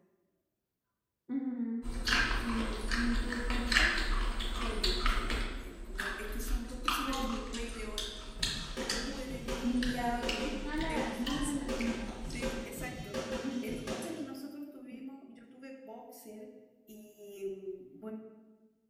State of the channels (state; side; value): identical; both; correlation 1.00